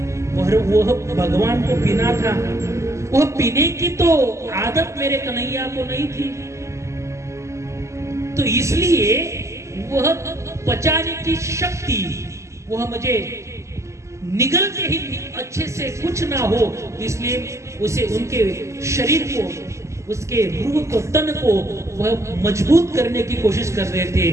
वह भगवान को पीना था। वह पीने की तो आदत मेरे कन्हैया को नहीं थी, तो इसलिए वह पचाने की शक्ति वह मुझे निगलते ही अच्छे से कुछ ना हो, इसलिए उसे उनके शरीर को, उसके रूह को, तन को वह मजबूत करने की कोशिश कर रहे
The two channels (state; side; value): late; left; 0.14 ms